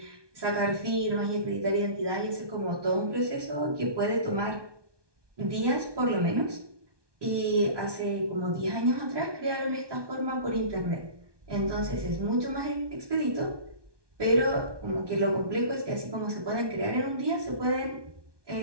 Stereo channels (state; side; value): late; left; 1.2 ms